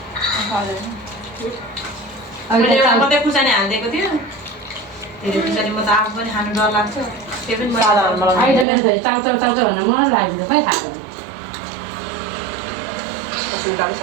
मैले एउटा मात्रै खुर्सानी हालिदिएको थियो धेरै खुर्सानी म त आफू पनि खानु डर लाग्छ त्यो पनि अहिले त मेरो छोरी चाउचाउ चाउचाउ भनेर मलाई लाग्यो खै खाएको सुनकाले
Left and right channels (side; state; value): left; drops out; at 8.7 s